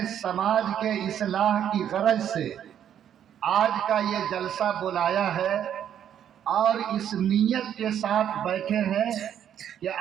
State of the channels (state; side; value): quieter; left; 9.7 dB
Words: سماج کے اصلاح کی غرض سے آج کا یہ جلسہ بلایا ہے اور اس نیت کے ساتھ بیٹھے ہیں کہ